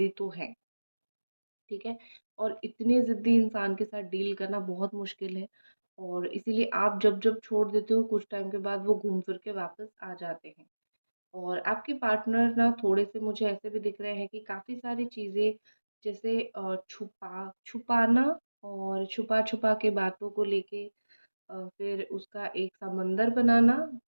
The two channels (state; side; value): inverted; both; correlation -1.00